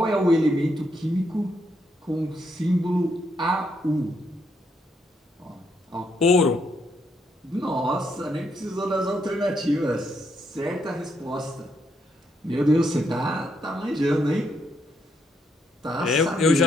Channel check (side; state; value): both; normal; correlation 0.77